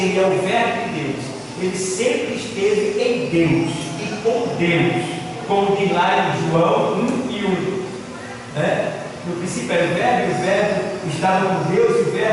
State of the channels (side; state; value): both; identical; correlation 1.00